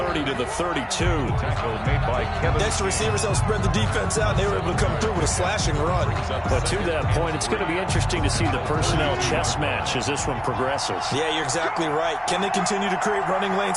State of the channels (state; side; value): identical; both; correlation 1.00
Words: to the 32. Tackle made by Kevin. Next, the receivers helped spread the defense out, and they were able to come through with a slashing run. But to that point, it's going to be interesting to see the personnel chess match as this one progresses. Yeah, you're exactly right. Can they continue to create running lanes